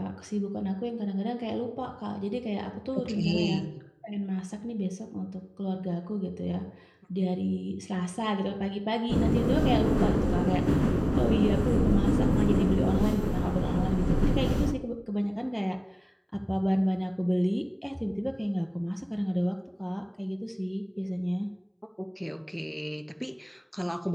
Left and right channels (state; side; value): identical; both; correlation 1.00